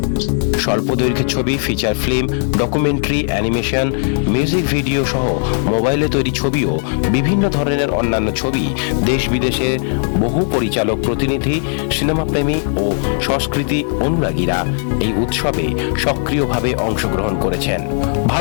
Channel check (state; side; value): silent; right; 58 dB below the other